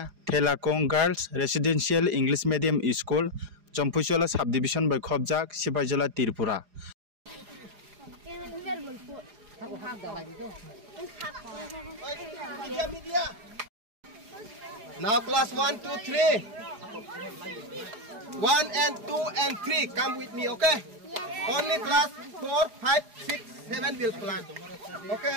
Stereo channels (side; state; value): left; late; 4.9 ms